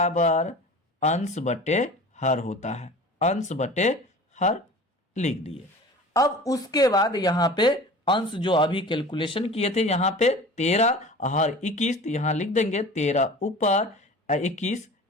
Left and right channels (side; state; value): both; normal; correlation 0.39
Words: अंश बटे हर होता है, अंश बटे हर लिख दिए। अब उसके बाद यहाँ पे अंश जो अभी कैलकुलेशन किए थे, यहाँ पे 13 हर 21, तो यहाँ लिख देंगे 13 ऊपर 21